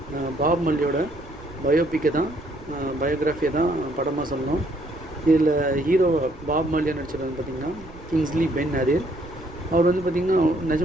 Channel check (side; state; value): right; noise; rumble, 19 dB below the sound